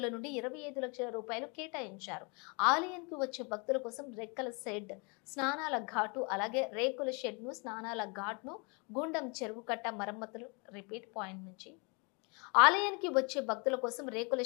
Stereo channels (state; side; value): quieter; right; 32.3 dB